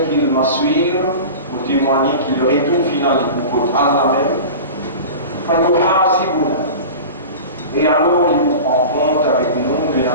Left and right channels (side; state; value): both; inverted; correlation -0.33